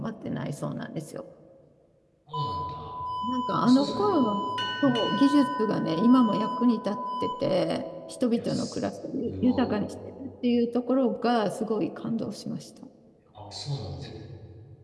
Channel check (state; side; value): identical; both; correlation 1.00